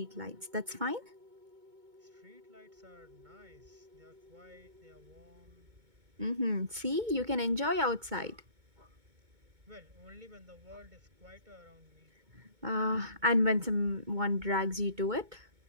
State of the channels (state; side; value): late; left; 2.2 ms